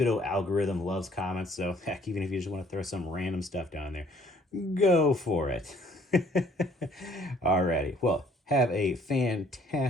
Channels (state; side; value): normal; both; correlation 0.60